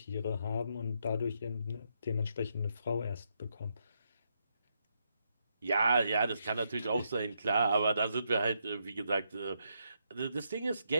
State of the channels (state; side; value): inverted; both; correlation -0.79